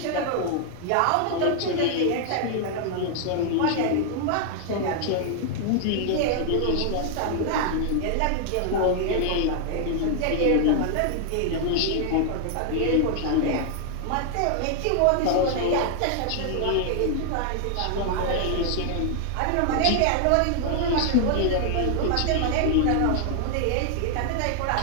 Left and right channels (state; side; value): different; both; correlation 0.00